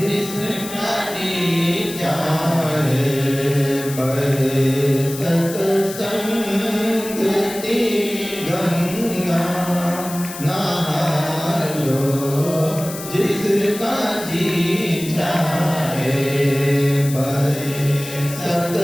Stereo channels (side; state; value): left; noise; hiss, 11 dB below the sound